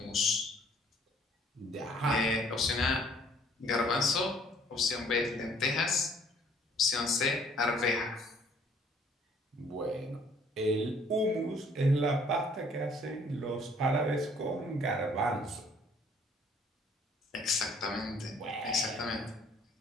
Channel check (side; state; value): both; normal; correlation 0.59